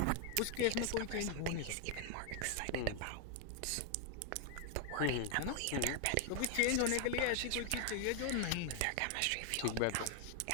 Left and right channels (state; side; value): different; both; correlation 0.00